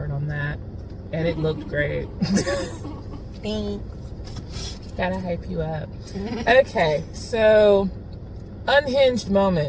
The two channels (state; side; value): identical; both; correlation 1.00